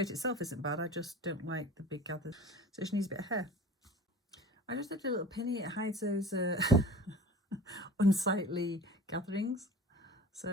itself isn't bad, I just don't like the big gathers, so she needs a bit of hair. I just did a little pinny, it hides those unsightly gatherings,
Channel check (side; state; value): both; normal; correlation 0.39